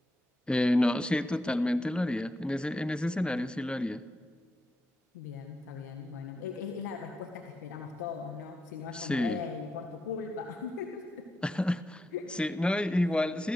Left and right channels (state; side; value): normal; both; correlation 0.86